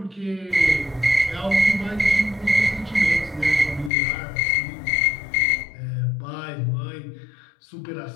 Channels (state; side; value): drops out; right; at 3.9 s